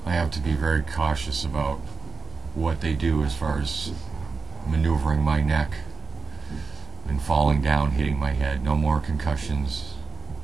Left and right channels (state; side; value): quieter; left; 4.8 dB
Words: I have to be very cautious about what they do as far as maneuvering my neck and falling down, hitting my head. No more concussions.